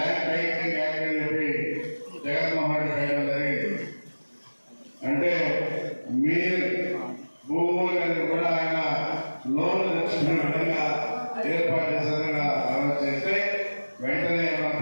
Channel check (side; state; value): both; inverted; correlation -1.00